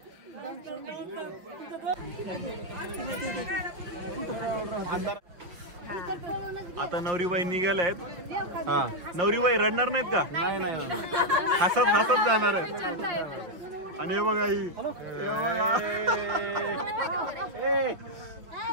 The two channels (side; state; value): left; late; 5.9 ms